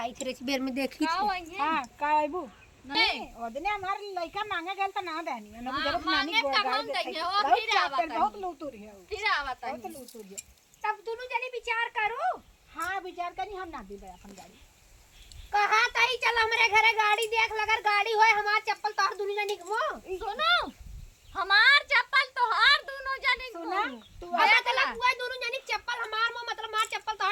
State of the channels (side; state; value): both; identical; correlation 1.00